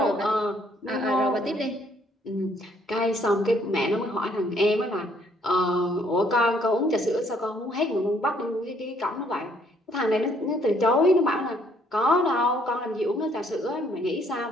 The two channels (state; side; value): normal; both; correlation 0.66